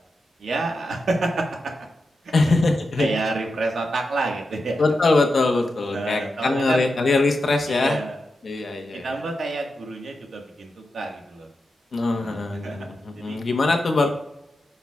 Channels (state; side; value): normal; both; correlation 0.89